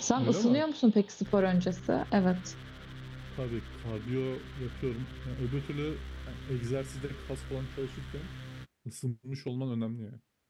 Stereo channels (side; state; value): both; identical; correlation 1.00